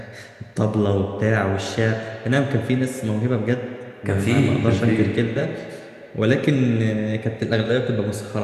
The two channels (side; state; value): both; identical; correlation 1.00